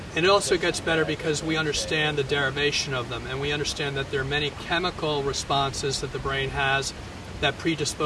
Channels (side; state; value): both; identical; correlation 1.00